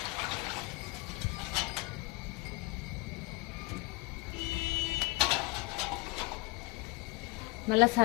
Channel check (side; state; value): right; quieter; 24.7 dB